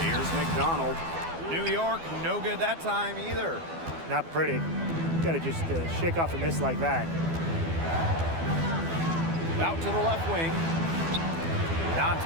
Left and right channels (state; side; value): late; left; 12 ms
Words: Here's McDonald. New York, no good that time either. Not pretty. Got to just shake off a miss like that. Out to the left wing.